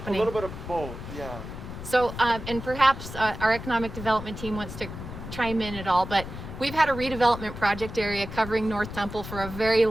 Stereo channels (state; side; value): noise; left; rumble, 10 dB below the sound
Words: little bit of both, yeah. So, and perhaps our economic development team wants to chime in at all, but we've had a redevelopment project area covering North Temple for a very